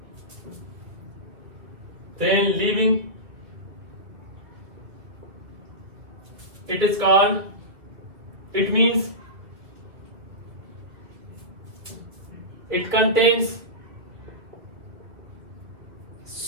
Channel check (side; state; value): left; late; 2.0 ms